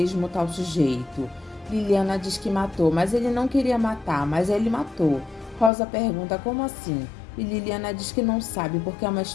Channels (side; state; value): right; drops out; at 5.7 s